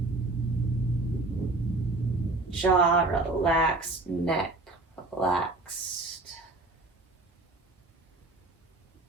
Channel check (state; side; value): quieter; left; 3.1 dB